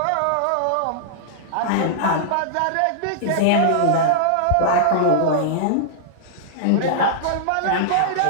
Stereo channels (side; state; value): both; different; correlation -0.02